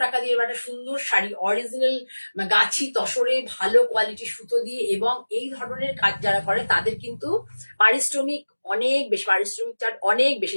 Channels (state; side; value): inverted; both; correlation -1.00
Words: টাকা দিয়ে একটা সুন্দর শাড়ি, অরিজিনাল গাছি তসরে ভালো কোয়ালিটির সুতো দিয়ে, এবং এই ধরনের কাজ যারা করে তাদের কিন্তু পারিশ্রমিক অনেক বেশি, পারিশ্রমিক চার্জ অনেক বেশি,